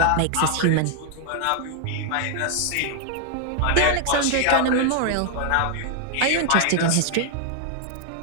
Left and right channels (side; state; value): both; different; correlation 0.00